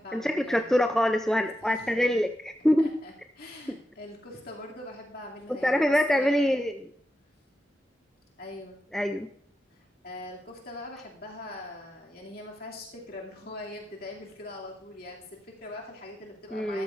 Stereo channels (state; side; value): normal; both; correlation 0.88